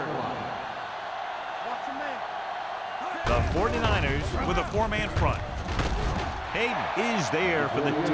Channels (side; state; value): both; identical; correlation 1.00